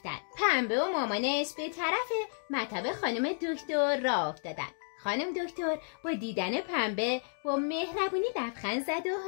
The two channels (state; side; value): silent; right; digital silence